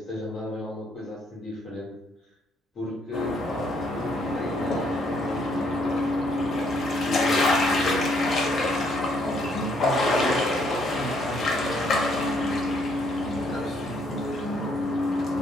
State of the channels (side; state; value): both; normal; correlation 0.69